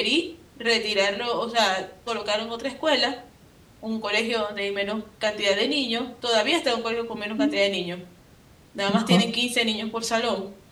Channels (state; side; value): identical; both; correlation 1.00